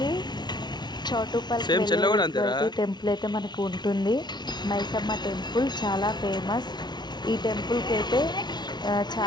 చౌటుప్పల్కి వెళ్ళే టెంపుల్ అయితే మనకు ఉంటుంది. మైసమ్మ టెంపుల్ చాలా ఫేమస్. ఈ టెంపుల్కి అయితే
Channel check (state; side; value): late; right; 0.20 ms